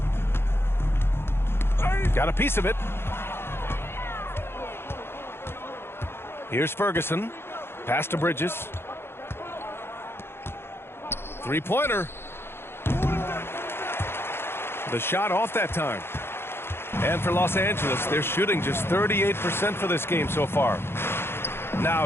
Got a piece of it. Here's Ferguson. Pass to Bridges. Three-pointer. The shot off that time. And for Los Angeles, they're shooting just 38% for this game so far.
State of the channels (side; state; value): right; late; 0.11 ms